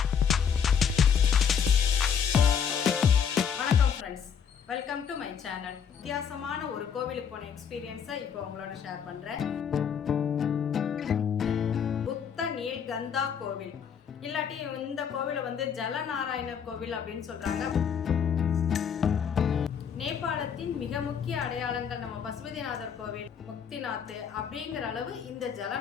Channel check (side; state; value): right; quieter; 7.4 dB